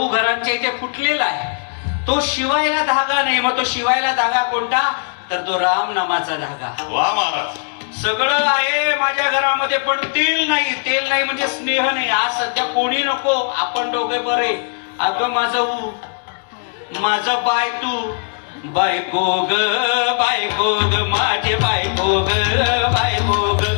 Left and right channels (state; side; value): silent; right; 64 dB below the other